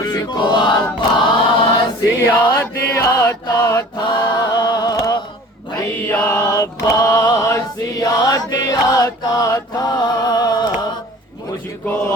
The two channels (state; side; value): normal; both; correlation 0.45